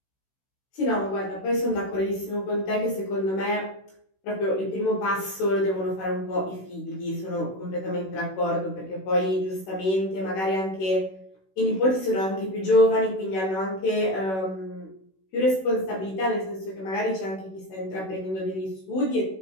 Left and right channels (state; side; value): late; right; 16 ms